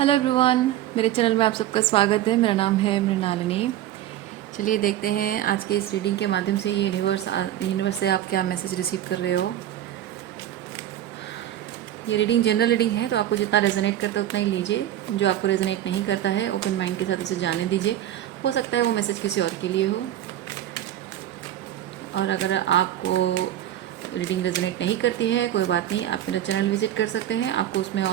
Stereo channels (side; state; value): left; quieter; 12.3 dB